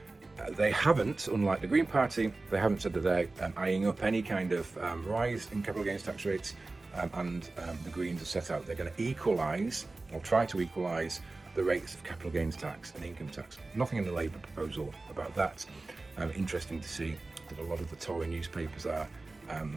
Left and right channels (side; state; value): left; quieter; 3.3 dB